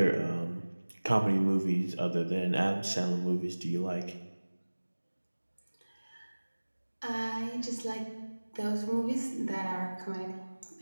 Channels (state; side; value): inverted; both; correlation -1.00